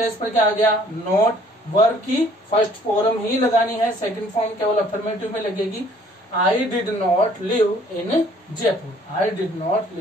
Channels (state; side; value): normal; both; correlation 0.58